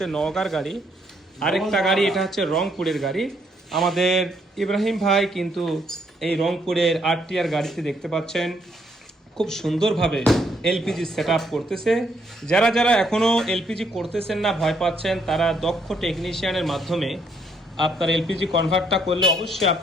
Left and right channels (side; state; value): both; normal; correlation 0.71